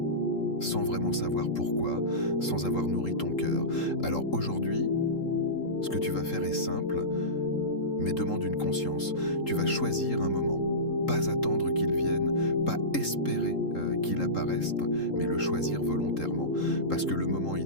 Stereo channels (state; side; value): late; right; 3.8 ms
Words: sans vraiment savoir pourquoi, sans avoir nourri ton cœur. Alors aujourd'hui, ce que tu vas faire est simple, mais demande une conscience. Tu vas choisir un moment, pas attendre qu'il vienne, pas espérer qu'il apparaisse, mais le choisir volontairement. Parce que le moment